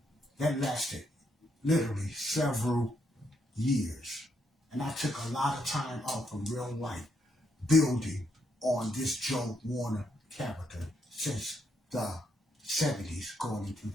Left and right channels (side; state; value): both; normal; correlation 0.76